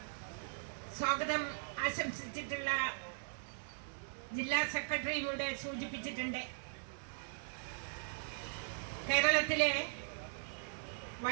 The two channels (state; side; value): silent; left; digital silence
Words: സ്വാഗതം ആശംസിച്ചിട്ടുള്ള ജില്ലാ സെക്രട്ടറിയും ഇവിടെ സൂചിപ്പിച്ചിട്ടുണ്ട്. കേരളത്തിലെ